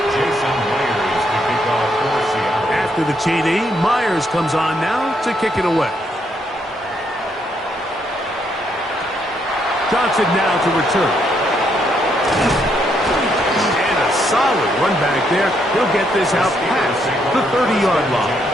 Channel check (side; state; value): both; normal; correlation 0.75